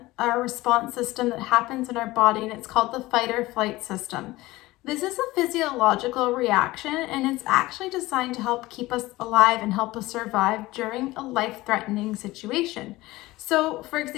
a response system that happens in our body, and it's called the fight or flight system. This is a physiological reaction, and it's actually designed to help keep us alive and help us survive during a life-threatening situation. So, for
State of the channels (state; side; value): quieter; right; 19.0 dB